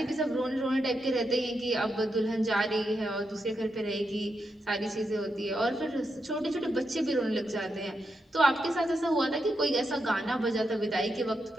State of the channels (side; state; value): both; normal; correlation 0.85